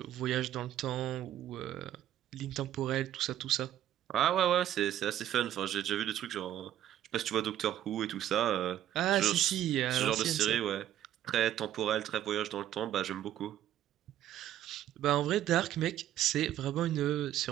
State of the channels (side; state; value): left; quieter; 12.0 dB